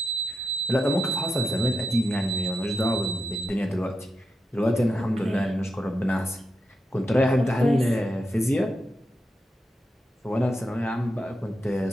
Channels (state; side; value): normal; both; correlation 0.87